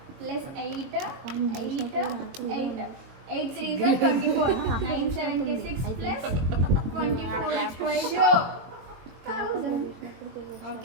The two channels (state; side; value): late; left; 21 ms